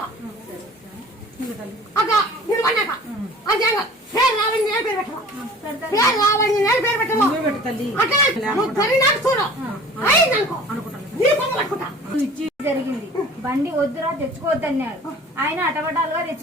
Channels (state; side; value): normal; both; correlation 0.45